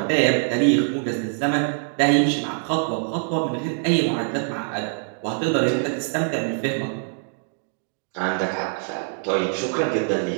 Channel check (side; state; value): left; silent; 63 dB below the other